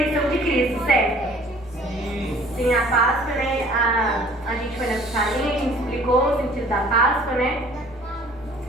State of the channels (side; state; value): both; normal; correlation 0.52